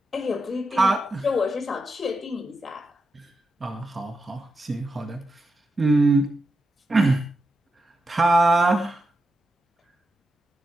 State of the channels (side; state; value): both; normal; correlation 0.87